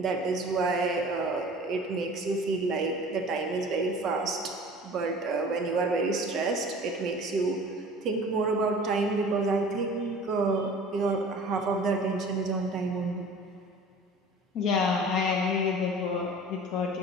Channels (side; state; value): both; normal; correlation 0.43